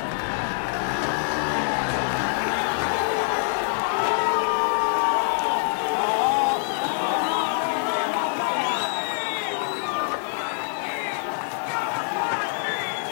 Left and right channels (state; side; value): silent; right; digital silence